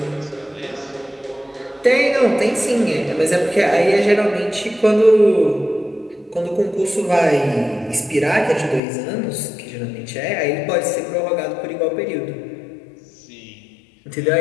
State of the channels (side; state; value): right; drops out; at 8.8 s